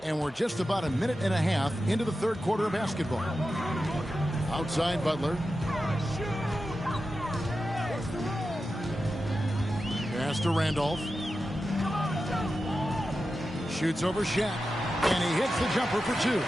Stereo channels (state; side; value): normal; both; correlation 0.91